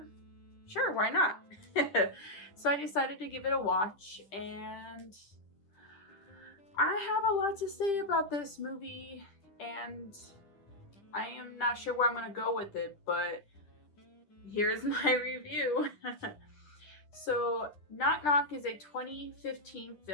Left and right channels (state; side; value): late; right; 10 ms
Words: Sure, why not? So I decided to give it a watch. And I have a lot to say about this movie. And I am not sure where I'm going to go with it. But here's my review. So, Knock Knock is a 2015